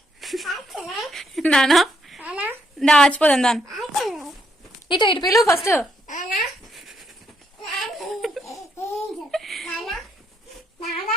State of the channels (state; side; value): normal; both; correlation 0.75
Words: నానా దా ఆచిపోదాం దాని ఇటు ఇటు పిలువు ఫస్ట్